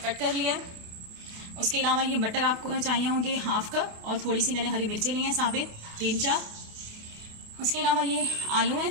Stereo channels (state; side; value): late; left; 28 ms